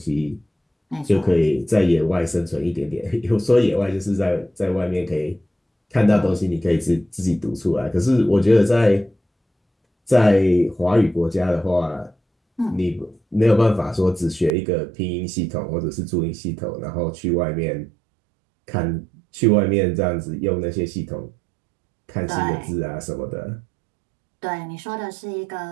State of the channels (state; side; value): drops out; left; at 14.5 s